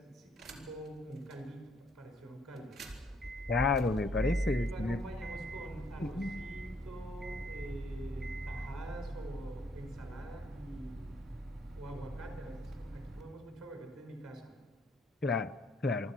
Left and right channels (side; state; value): both; normal; correlation 0.68